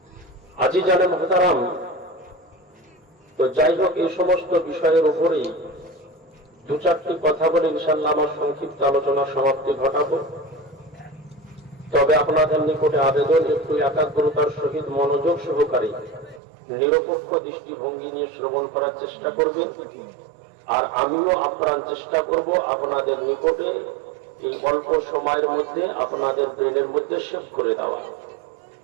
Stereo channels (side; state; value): left; drops out; at 16.4 s